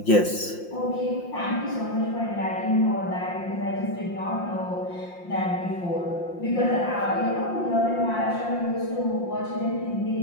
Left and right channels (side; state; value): right; late; 5.7 ms